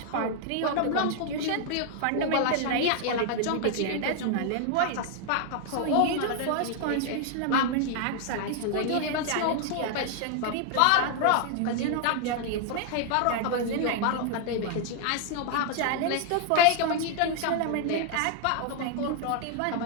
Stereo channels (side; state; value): both; different; correlation 0.00